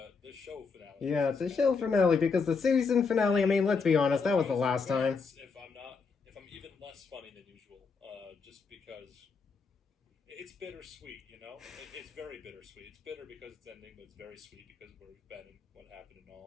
the show finale. Yeah, it's a show finale because the season finale, I mean, let's be honest, that was the last time. If I'm even less funny than usual, just because it's bittersweet, you know? It's very bittersweet. It's bitter because it's ending, but it's very sweet because of where we've been and what happened and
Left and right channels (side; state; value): right; quieter; 5.0 dB